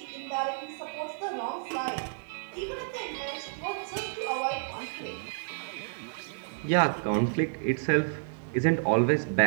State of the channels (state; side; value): silent; left; digital silence